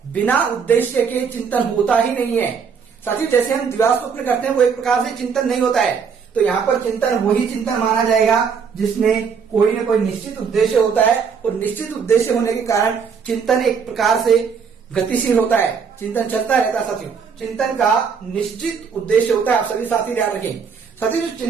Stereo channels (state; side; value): quieter; left; 6.2 dB